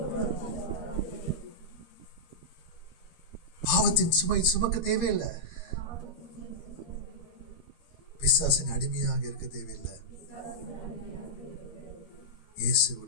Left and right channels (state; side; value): late; right; 13 ms